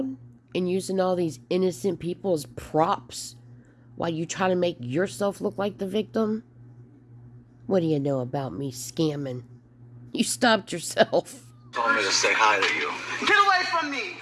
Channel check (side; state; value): both; identical; correlation 1.00